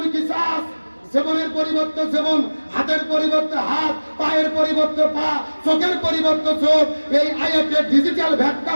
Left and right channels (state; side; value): inverted; both; correlation -1.00